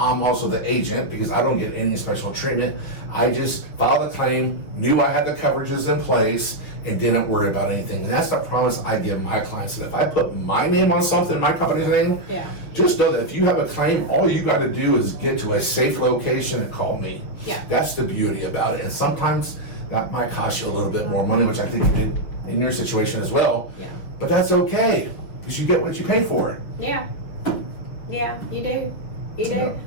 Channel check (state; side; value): late; right; 6.2 ms